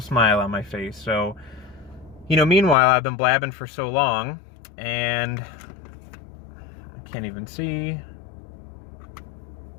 smile on my face. So, you know, meanwhile, I've been blabbing for so long, and I can't even see.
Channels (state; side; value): drops out; right; at 2.8 s